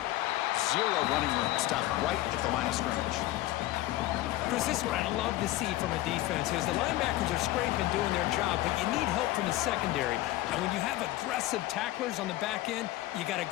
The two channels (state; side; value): quieter; right; 16.3 dB